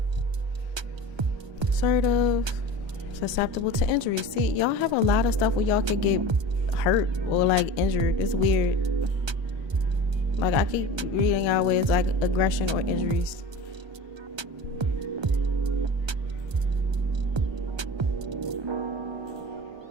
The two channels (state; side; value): late; left; 1.2 ms